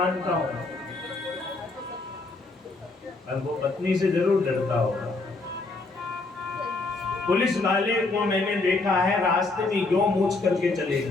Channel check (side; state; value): right; quieter; 3.4 dB